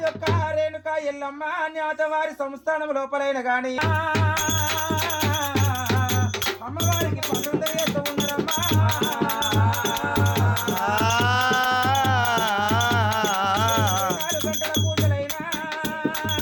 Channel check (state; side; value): identical; both; correlation 1.00